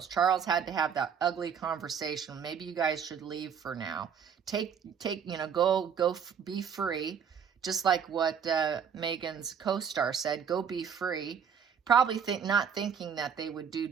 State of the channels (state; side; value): quieter; left; 7.3 dB